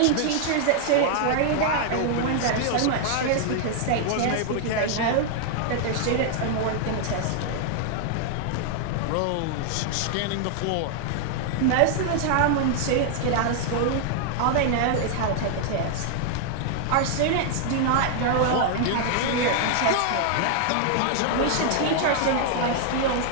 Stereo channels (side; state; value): both; different; correlation 0.00